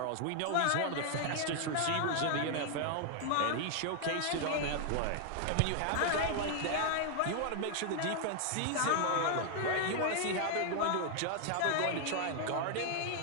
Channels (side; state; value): both; different; correlation 0.00